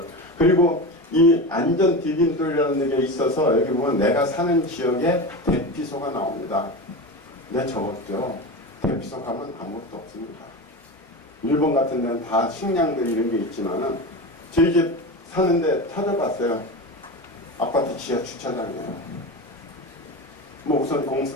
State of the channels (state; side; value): normal; both; correlation 0.24